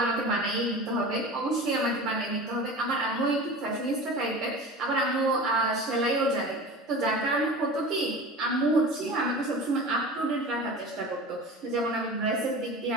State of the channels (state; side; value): normal; both; correlation 0.34